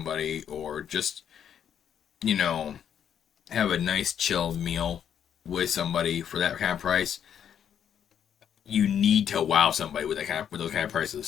or just, you know, have a nice chill meal with somebody for that kind of price, you need to wow somebody with those kind of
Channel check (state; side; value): quieter; right; 8.9 dB